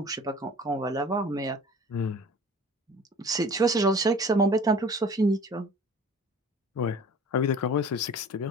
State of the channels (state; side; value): normal; both; correlation 0.44